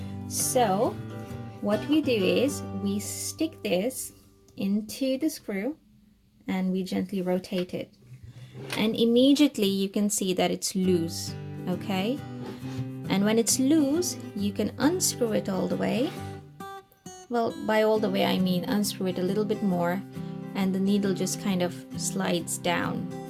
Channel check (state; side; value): identical; both; correlation 1.00